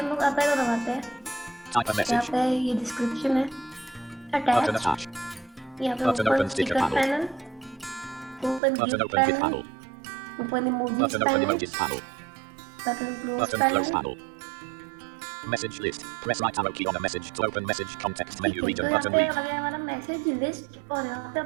लोग अप एरो दबाते हैं, यहाँ पे ये डिस्क्रिप्शन है, अटैच, यहाँ पे open sticker panel, open GIF panel, open emojis panel, button close panel, Message list. Press right arrow key on a message to open message context menu region तो यहाँ button पे read. आ गया हमारा message list. और यहाँ पे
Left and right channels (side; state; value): left; drops out; at 8.6 s